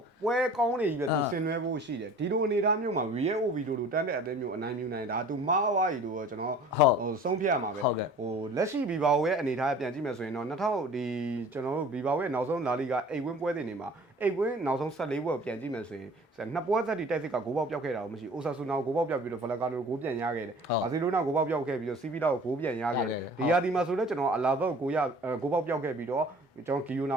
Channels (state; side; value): late; right; 1.1 ms